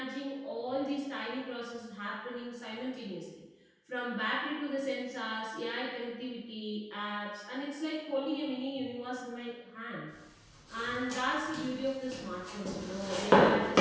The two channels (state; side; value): identical; both; correlation 1.00